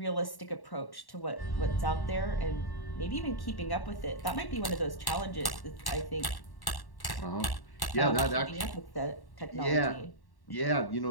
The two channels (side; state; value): right; late; 1.1 ms